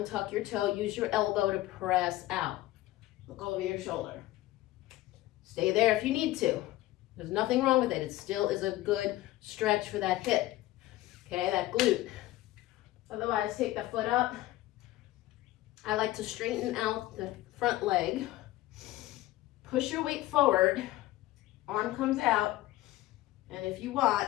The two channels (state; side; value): quieter; right; 16.5 dB